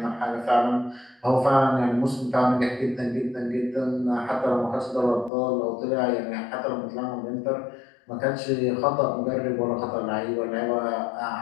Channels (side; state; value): right; drops out; at 5.3 s